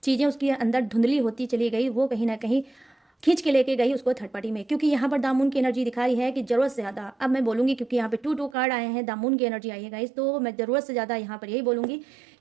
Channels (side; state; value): left; drops out; at 8.6 s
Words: चीज़ें उसके अंदर धुंधली होती चली गई, वो कहीं ना कहीं खींच के लेके गई उसको थर्ड पार्टी में। क्योंकि यहाँ पर दामून की एनर्जी दिखा रही है कि जरूरत से ज़्यादा, अब मैं बोलूँगी क्योंकि यहाँ पे 2 कार्ड आए हैं, दामून की एनर्जी आई है गाइस, तो मैं ज़रूरत से ज़्यादा यहाँ पर यही बोलूँगी